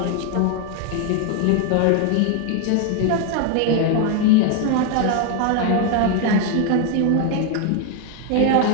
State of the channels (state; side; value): different; both; correlation 0.01